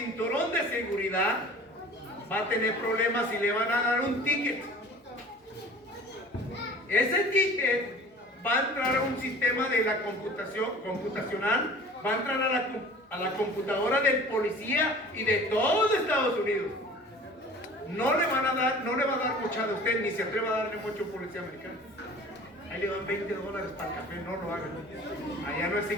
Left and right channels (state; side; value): normal; both; correlation 0.44